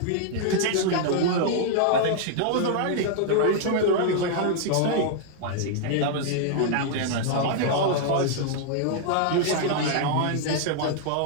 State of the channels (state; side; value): different; both; correlation -0.01